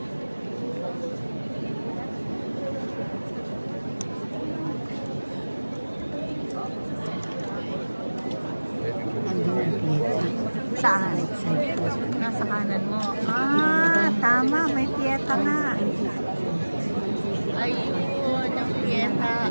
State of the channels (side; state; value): both; inverted; correlation -1.00